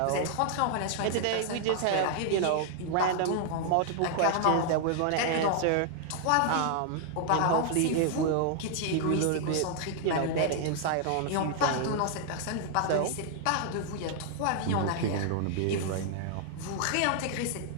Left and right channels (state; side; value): different; both; correlation 0.00